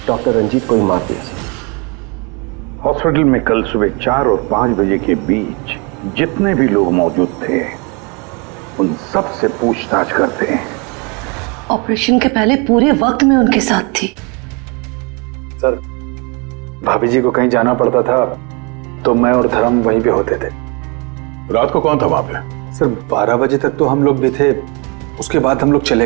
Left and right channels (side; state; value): left; quieter; 30.9 dB